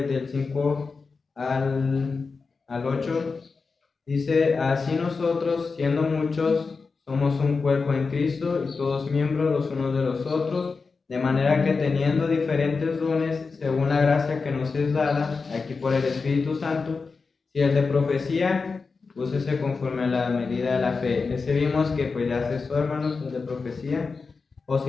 del 5 al 8, dice: así nosotros, siendo muchos, somos un cuerpo en Cristo y todos miembros los unos de los otros, de manera que teniendo diferentes dones según la gracia que nos es dada, aquí por el Espíritu Santo, si el de profecía, úsese conforme a la medida de la fe. Ese vimos que pues ya cesó, hermanos, el de profecía. O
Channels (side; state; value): right; quieter; 4.5 dB